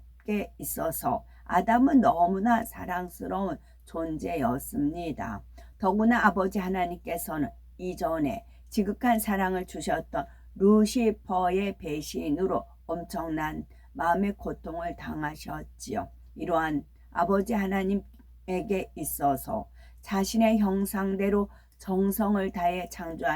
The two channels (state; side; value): identical; both; correlation 1.00